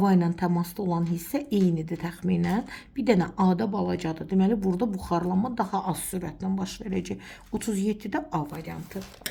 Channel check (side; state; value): both; identical; correlation 1.00